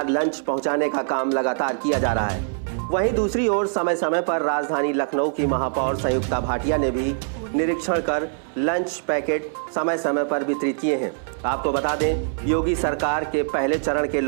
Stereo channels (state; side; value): silent; left; 63 dB below the other